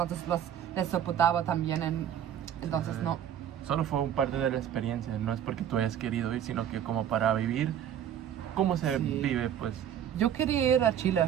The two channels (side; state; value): left; quieter; 9.9 dB